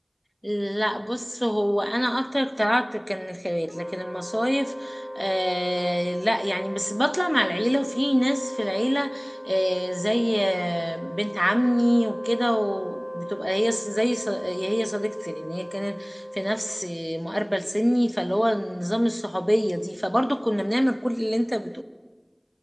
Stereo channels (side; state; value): both; identical; correlation 1.00